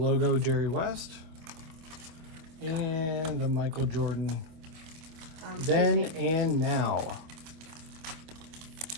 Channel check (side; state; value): left; late; 25 ms